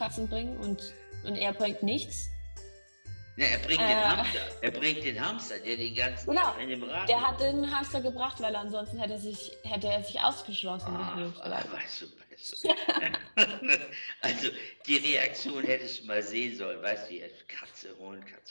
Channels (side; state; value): both; inverted; correlation -1.00